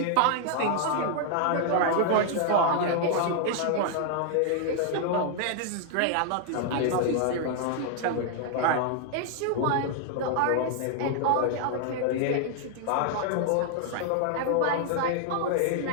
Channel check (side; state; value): both; different; correlation 0.00